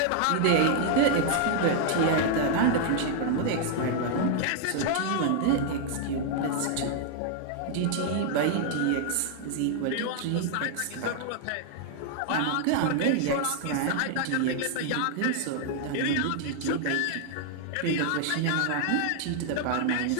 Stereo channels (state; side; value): different; both; correlation 0.00